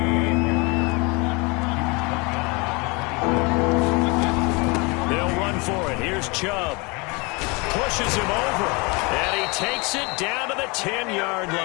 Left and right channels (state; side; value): quieter; right; 28.3 dB